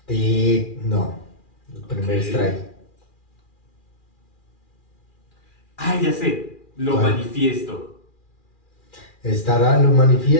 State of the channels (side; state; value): right; late; 2.4 ms